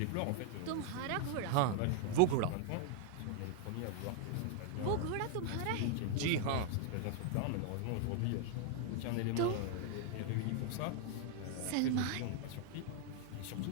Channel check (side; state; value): both; different; correlation 0.00